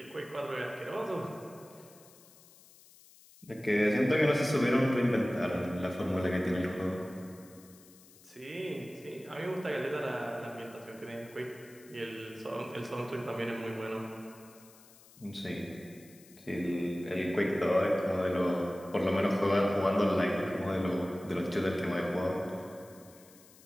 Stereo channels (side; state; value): left; noise; hiss, 24 dB below the sound